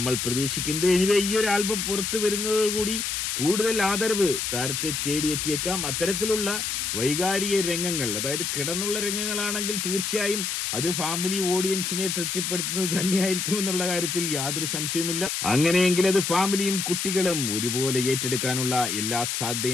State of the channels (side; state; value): left; noise; hiss, 1 dB below the sound